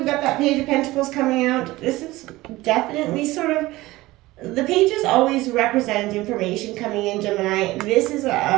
got that Page of Pentacles coming out. This is definitely the pages always represent information coming in, Gemini. This is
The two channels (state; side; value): quieter; left; 18.8 dB